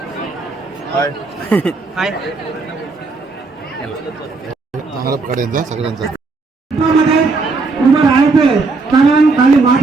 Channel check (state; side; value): quieter; left; 4.0 dB